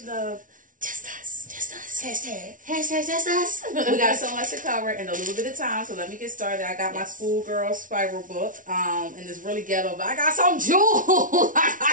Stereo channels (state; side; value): late; left; 0.38 ms